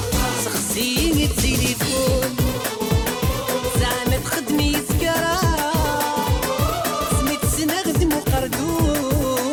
سخسيني التليفون زعما تخدمي سكرة سميت سنخدم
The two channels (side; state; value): both; identical; correlation 1.00